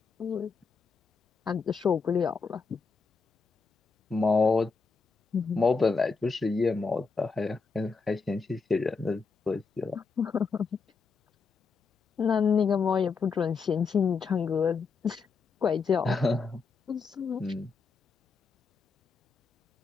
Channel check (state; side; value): quieter; right; 4.9 dB